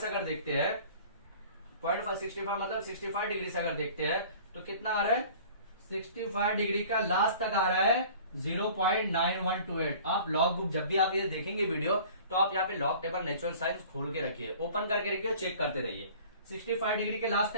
अगर देखते हैं, 0.65 मतलब 65 डिग्री से अगर देखते हैं तो कितना आ रहा है 65 डिग्री का लास्ट तक आ रहा है 0.9128। आप लॉग बुक जब भी आप ये देखेंगे वीडियो तो आप यहाँ पे लॉग टेबल नेचुरल साइंस खोल के रखिए, ओपन करके रखिए और चेक करते रहिए। 65 डिग्री के लास्ट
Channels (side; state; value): both; inverted; correlation -0.46